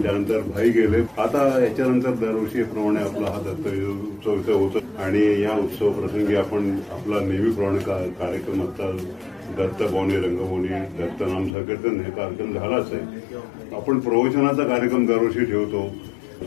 त्यानंतर भाई गेले. आता याच्यानंतर दरवर्षीप्रमाणे आपला हा दत्त उत्सव होतो आणि या उत्सव प्रसंगी आपण आपला नेहमीप्रमाणे कार्यक्रम असतात. दत्त भवनी, रंगभवनी, दत्त नाम संकीर्तन हे कार्यक्रम झालाच आहे. आपण प्रवचनाचा कार्यक्रम दरवर्षी ठेवतो.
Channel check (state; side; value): drops out; right; at 11.6 s